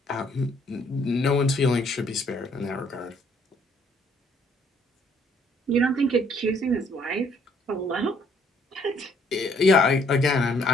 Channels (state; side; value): normal; both; correlation 0.65